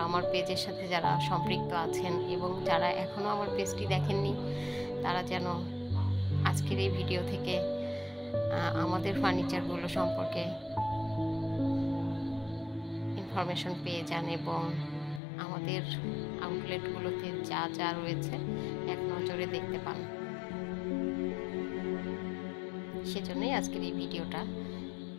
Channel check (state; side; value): drops out; right; at 15.2 s